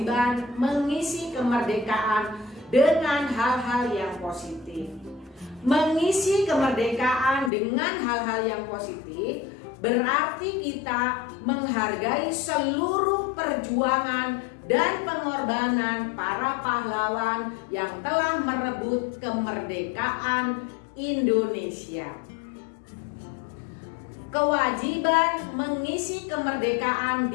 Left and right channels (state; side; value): drops out; right; at 7.5 s